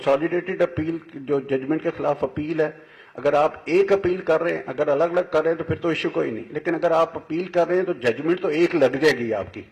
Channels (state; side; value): identical; both; correlation 1.00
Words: अपील जो जजमेंट के खिलाफ अपील है, अगर आप एक अपील कर रहे हैं, अगर अलग अलग कर रहे हैं तो फिर तो इश्यू कोई नहीं, लेकिन अगर आप अपील कर रहे हैं तो जजमेंट तो एक लग जाएगी आपकी।